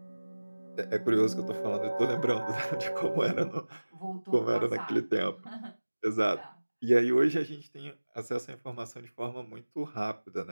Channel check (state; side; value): inverted; both; correlation -1.00